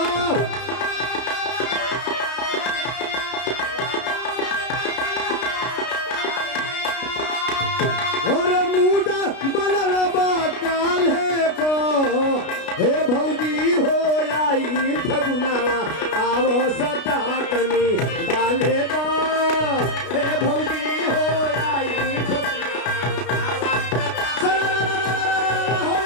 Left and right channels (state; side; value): late; right; 33 ms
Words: मोर मुदा बनल बा काल्हे का हे भौजी हो आई फगुनवा आवो सटा तनी डाले दो हे भौजी हो आई